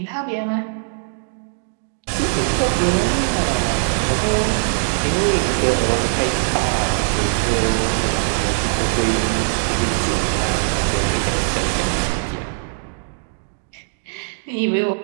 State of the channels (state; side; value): silent; left; digital silence